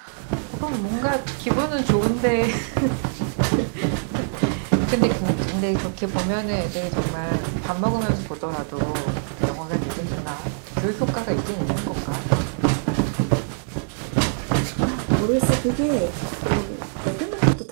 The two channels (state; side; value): silent; left; 63 dB below the other